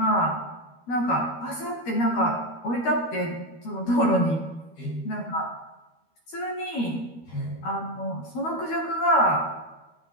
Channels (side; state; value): right; late; 13 ms